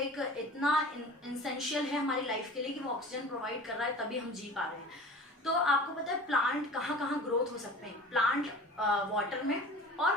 इतना इसेंशियल है हमारी लाइफ के लिए कि वो ऑक्सीजन प्रोवाइड कर रहा है, तभी हम जी पा रहे हैं। तो आपको पता है प्लांट कहाँ कहाँ ग्रोथ हो सकते हैं। प्लांट वाटर में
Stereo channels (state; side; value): normal; both; correlation 0.40